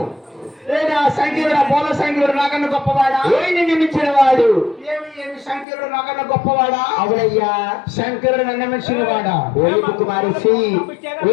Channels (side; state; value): right; drops out; at 5.7 s